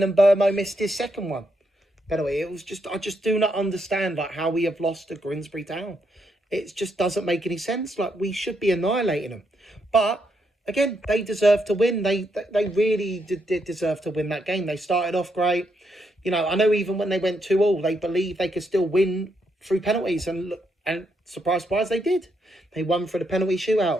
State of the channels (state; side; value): normal; both; correlation 0.78